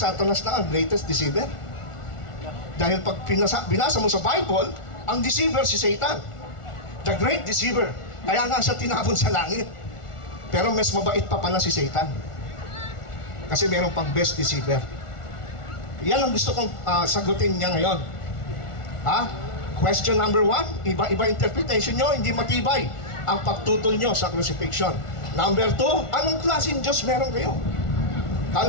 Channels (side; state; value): right; late; 1.4 ms